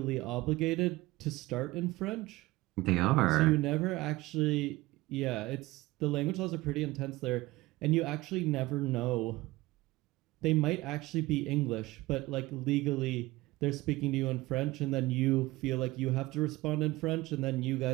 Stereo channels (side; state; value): left; quieter; 19.5 dB